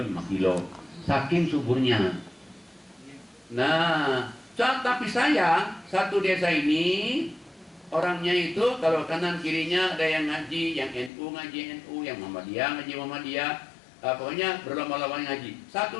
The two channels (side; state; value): right; drops out; at 11.1 s